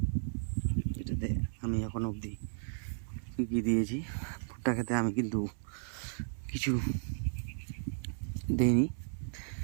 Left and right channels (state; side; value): silent; left; 55 dB below the other